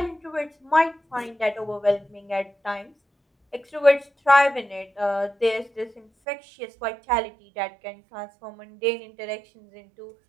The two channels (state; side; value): drops out; left; at 6.1 s